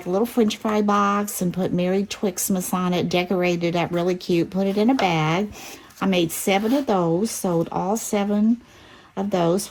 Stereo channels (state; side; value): identical; both; correlation 1.00